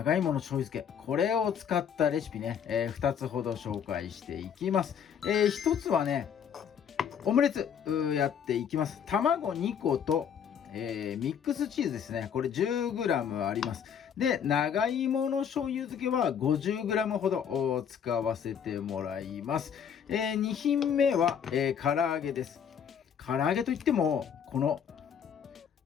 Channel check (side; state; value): right; quieter; 7.9 dB